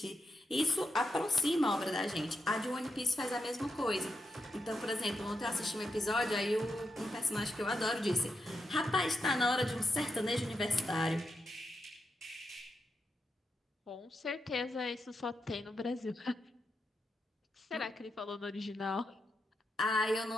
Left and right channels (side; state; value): both; normal; correlation 0.85